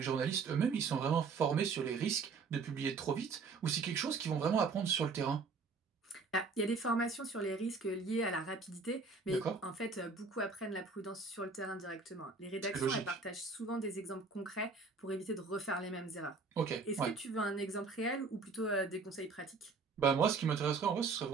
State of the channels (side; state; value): left; quieter; 4.6 dB